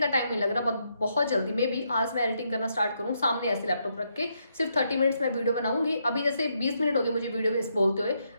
टाइम नहीं लग रहा, बहुत जल्दी में भी आज मैं एडिटिंग करना स्टार्ट करूँ, सामने ऐसे लैपटॉप रख के सिर्फ 30 मिनट्स में वीडियो बनाऊंगी। अभी जैसे 20 मिनट हो गए मुझे वीडियो में बोलते हुए,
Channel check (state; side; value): inverted; both; correlation -0.78